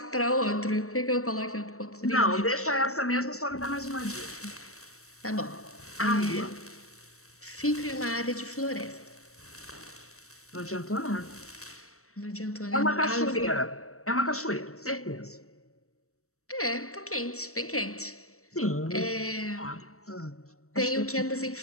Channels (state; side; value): late; right; 0.64 ms